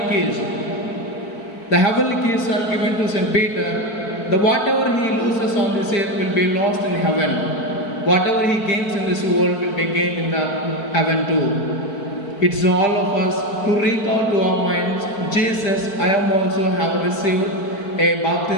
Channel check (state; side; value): late; right; 4.5 ms